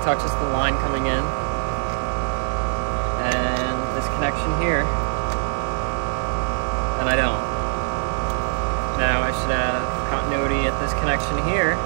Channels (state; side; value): silent; left; 60 dB below the other